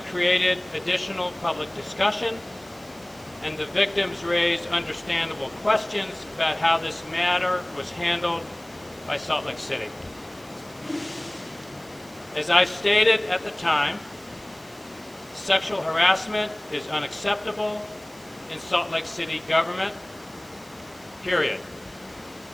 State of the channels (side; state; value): right; noise; hiss, 24 dB below the sound